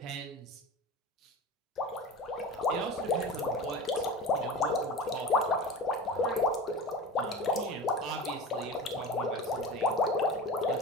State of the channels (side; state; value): both; normal; correlation 0.32